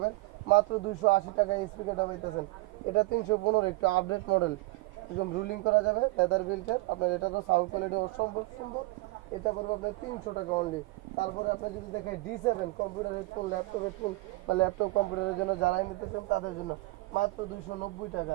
মাত্র 280 টাকা এই স্পিকারটা পাইতেছেন। এটা 315, একটু আপডেট মডেল, একদম রুলিং করা যাবে, লেদার বিল্টের। আপনার এটারও সাউন্ড কোয়ালিটি অসম্ভব সুন্দর, এটা করবো আপনার 300 টাকা অনলি। তারপরে আপনি যদি দেখেন D7 computer headphone, laptop headphone বা ল্যাপটপ কম্পিউটারের জন্য যারাই নিতে চান তাদের জন্য মাত্র 290 টাকা।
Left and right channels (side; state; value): left; quieter; 21.9 dB